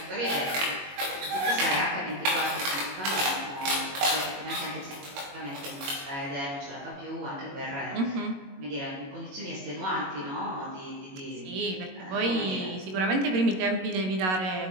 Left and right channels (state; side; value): late; left; 21 ms